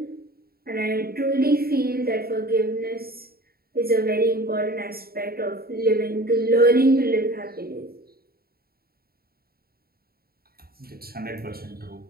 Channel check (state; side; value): late; left; 0.44 ms